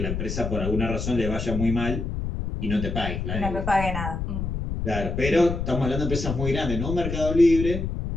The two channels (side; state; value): left; noise; rumble, 3 dB below the sound